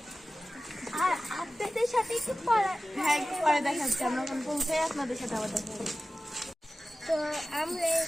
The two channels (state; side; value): normal; both; correlation 0.96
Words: আর আপনাদের সাথে একটু পরে দেখাচ্ছি, আমরা এখন পৌঁছে আপনাদের সাথে আবার দেখা হবে। তো আমরা